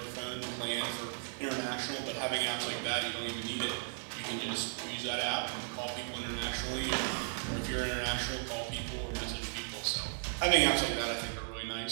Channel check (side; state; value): left; silent; digital silence